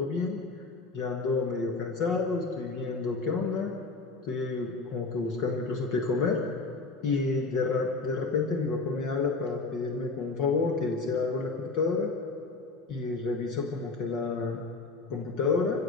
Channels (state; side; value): quieter; right; 3.7 dB